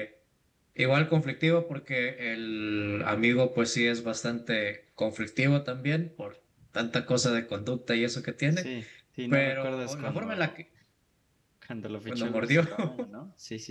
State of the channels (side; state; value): both; identical; correlation 1.00